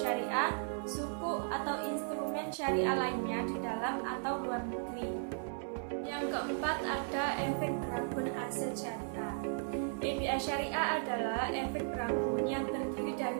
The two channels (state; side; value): silent; left; 54 dB below the other